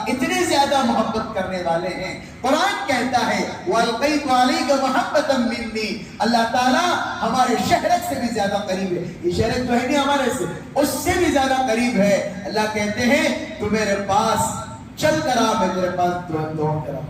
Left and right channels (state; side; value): identical; both; correlation 1.00